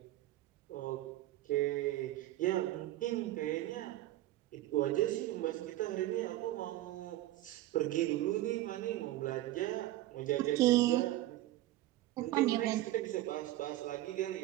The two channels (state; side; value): quieter; left; 15.5 dB